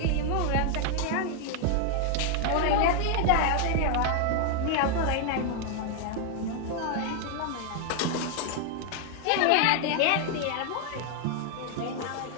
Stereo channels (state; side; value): different; both; correlation 0.00